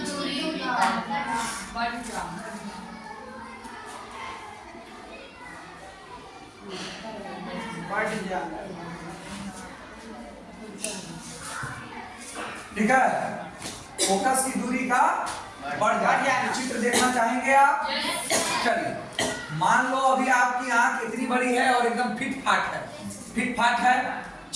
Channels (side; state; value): both; identical; correlation 1.00